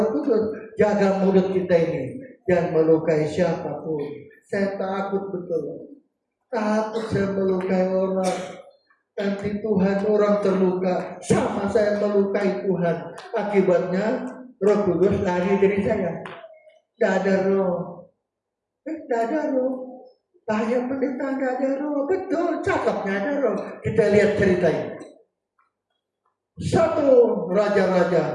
Kudus. Jaga mulut kita ini, jangan melukai siapapun. Saya takut betul. Takut saya melukai orang. Nanti Tuhan orang terluka, sama saya melukai Tuhan. Akibatnya Roh Kudus lari dari saya. Tidak ada roh. Tidak ada roh. Bahaya pendeta tidak ada roh. Betul, cakapnya ada roh. Kita lihat ceritanya. 1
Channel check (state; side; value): identical; both; correlation 1.00